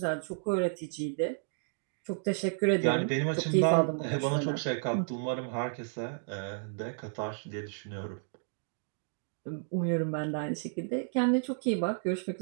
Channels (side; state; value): left; silent; digital silence